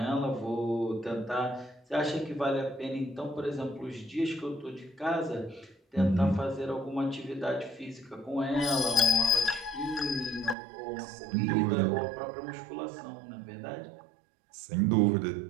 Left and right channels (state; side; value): drops out; left; at 10.6 s